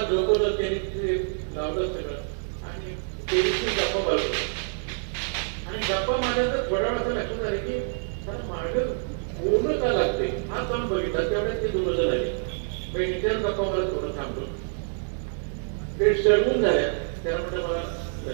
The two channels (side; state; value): left; silent; 60 dB below the other